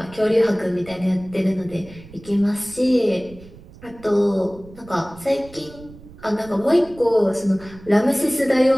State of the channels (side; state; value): right; noise; rumble, 20 dB below the sound